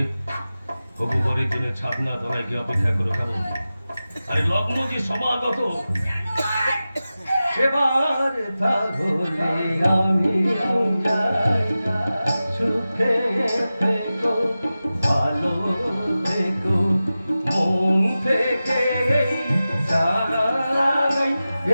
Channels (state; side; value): inverted; both; correlation -0.94